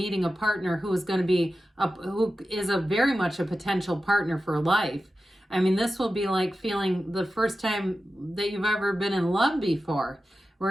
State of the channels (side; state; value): both; normal; correlation 0.93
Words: a partner who is going to be, who is a very much a potential partner for life. I mean, this will be like feeling the first time that you've ever been in love before,